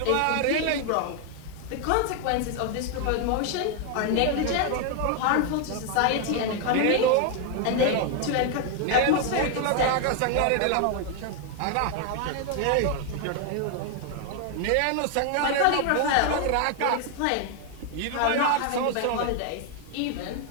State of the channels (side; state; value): both; different; correlation 0.00